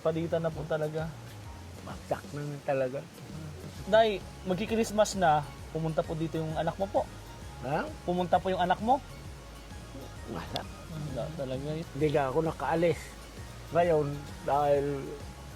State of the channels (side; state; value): both; identical; correlation 1.00